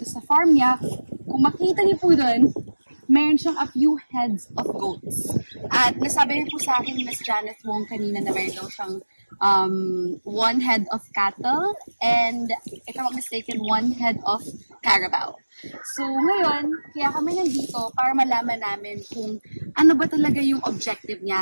sa farm niya, kung makikita niyo po doon, meron siyang a few heads of goats. At nasabi niyo po sa akin, Miss Janice Wong, kanina na meron daw siyang one head of cattle and, if I'm not mistaken, one head of carabao. So, ngayon, kaya kami nandito para malaman namin kung ano ba talaga yung objective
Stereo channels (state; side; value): inverted; both; correlation -1.00